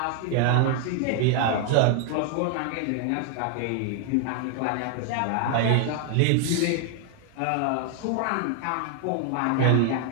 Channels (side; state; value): both; different; correlation 0.00